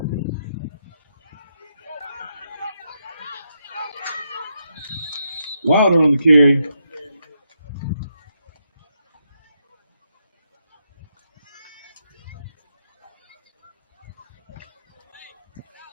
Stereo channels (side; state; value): both; inverted; correlation -0.81